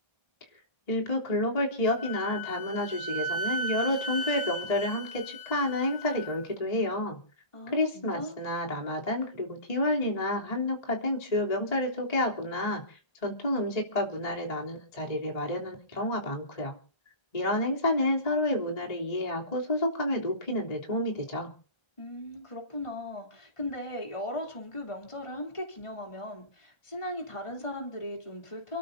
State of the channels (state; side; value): late; right; 1.3 ms